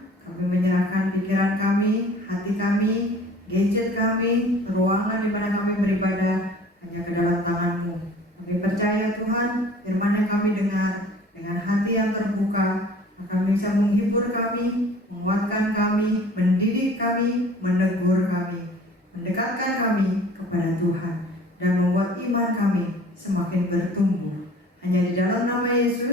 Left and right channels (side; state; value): both; normal; correlation 0.48